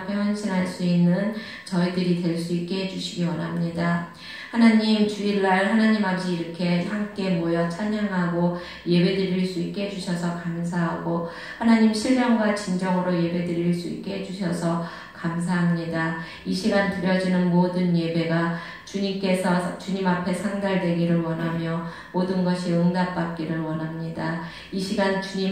헌신할 수 있는 저희들이 될 수 있게 해주시기 원합니다. 하나님 주일날 하나님 아버지 이렇게 함께 모여 찬양하고 예배드릴 수 있게 해주셔서 감사하고 하나님 신령과 진정으로 예배드릴 수 있게 해주셔서 감사합니다. 이 시간 드려지는 모든 예배가 주님께서 주님 앞에 상달되기를 원하며 모든 것이 응답받기를 원합니다. 이 시간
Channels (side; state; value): both; identical; correlation 1.00